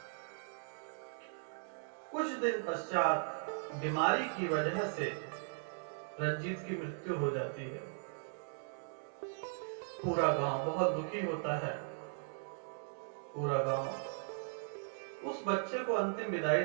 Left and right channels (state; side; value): silent; left; digital silence